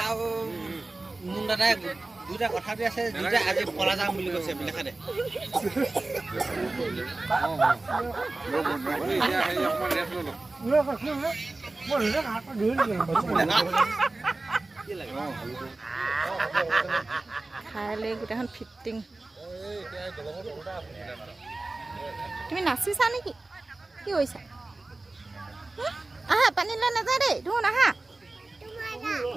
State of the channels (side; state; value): left; quieter; 3.1 dB